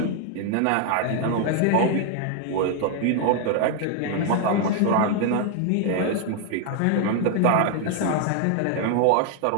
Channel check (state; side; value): different; both; correlation 0.00